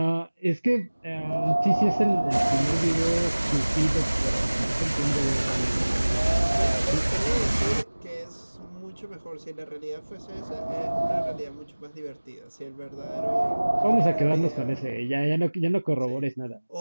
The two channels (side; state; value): both; inverted; correlation -1.00